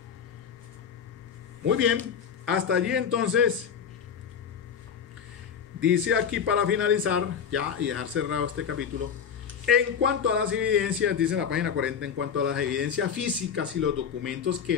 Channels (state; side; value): quieter; right; 7.3 dB